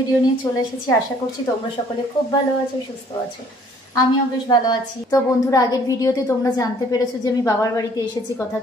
নিয়ে চলে এসেছি। আশা করছি তোমরা সকলে খুব ভালো আছো, সুস্থ আছো। আমিও বেশ ভালো আছি। তো বন্ধুরা, আগের ভিডিওতে তোমরা জানতে পেরেছো যে আমি বাবার বাড়িতে এসেছি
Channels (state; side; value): normal; both; correlation 0.58